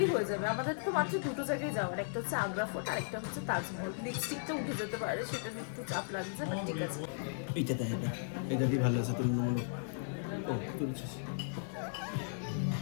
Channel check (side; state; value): right; silent; 54 dB below the other